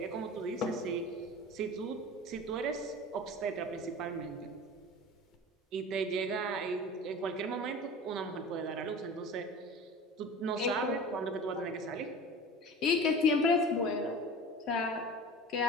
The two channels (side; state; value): both; normal; correlation 0.36